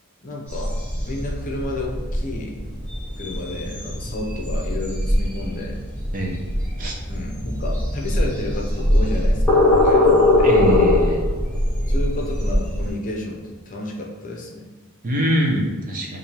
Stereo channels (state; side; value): normal; both; correlation 0.49